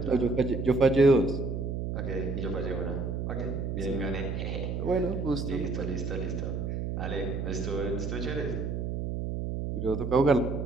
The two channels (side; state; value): right; noise; hum, 3 dB below the sound